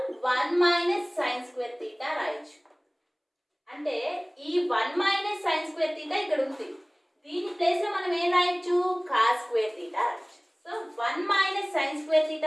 1 minus sine square theta రాయొచ్చు. అంటే ఈ 1 మైనస్ సైన్ స్క్వేర్ థీటా ఇక్కడ ఉంది. దీని ప్లేస్ లో మనం ఏం రాయొచ్చు? కాస్ స్క్వేర్ థీటా రాయొచ్చు. So 1 minus sine square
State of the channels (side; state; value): both; identical; correlation 1.00